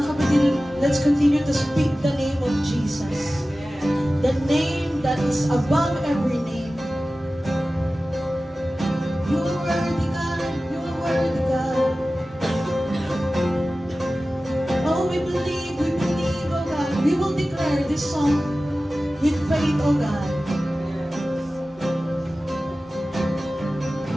kapatid, let's continue to speak the name of Jesus. The name that is above every name. You are worthy, God. You are worthy, God. Oh, we believe, oh God. We will declare this song with faith, oh God.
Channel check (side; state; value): both; normal; correlation 0.96